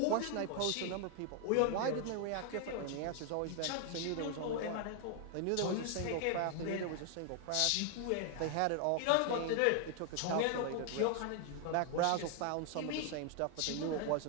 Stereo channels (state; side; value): different; both; correlation 0.00